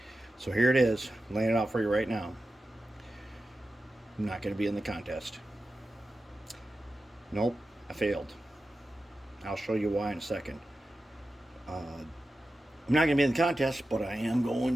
So here it is, I'm laying it out for you right now. I'm not going to be in the contest. Nope, I failed. I'll show you why in a second. I'm not going to be in the contest, but I am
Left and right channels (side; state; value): both; normal; correlation 0.93